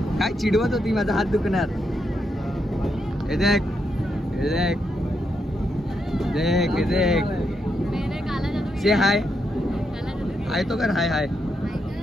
काय चिडवत होती? माझा हात दुखणार. हे देख, हे देख, देख, हे देख. से हाय. हाय तो कर. हाय हाय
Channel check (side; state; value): both; normal; correlation 0.81